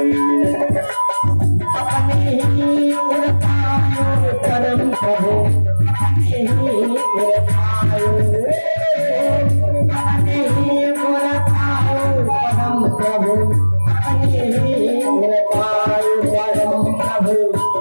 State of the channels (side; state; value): both; inverted; correlation -1.00